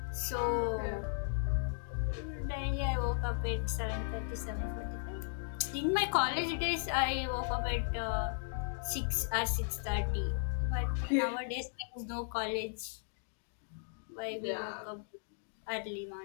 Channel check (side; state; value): right; silent; digital silence